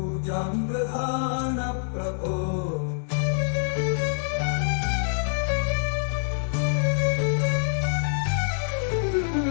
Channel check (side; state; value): right; silent; digital silence